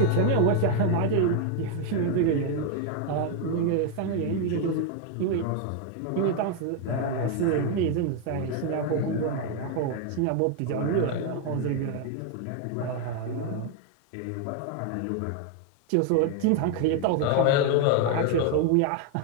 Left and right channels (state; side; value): different; both; correlation 0.01